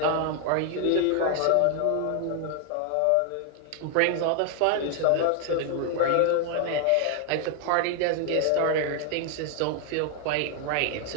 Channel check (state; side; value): different; both; correlation 0.00